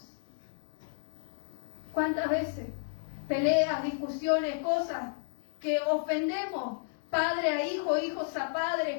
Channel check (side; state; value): right; silent; digital silence